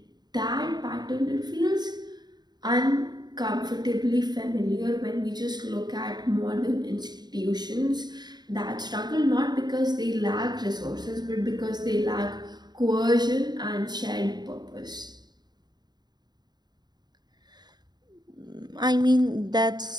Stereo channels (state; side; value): late; left; 0.20 ms